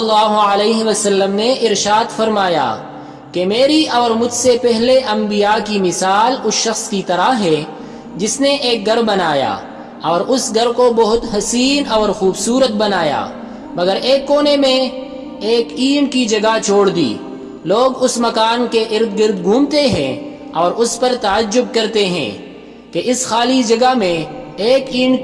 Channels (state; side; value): identical; both; correlation 1.00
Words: علیہ وسلم نے ارشاد فرمایا کہ میری اور مجھ سے پہلے انبیاء کی مثال اس شخص کی طرح ہے جس نے ایک گھر بنایا اور اس گھر کو بہت حسین اور خوبصورت بنایا، مگر ایک کونے میں ایک اینٹ کی جگہ چھوڑ دی۔ لوگ اس مکان کے ارد گرد گھومتے ہیں اور اس پر تعجب کرتے ہیں کہ اس خالی جگہ میں ایک اینٹ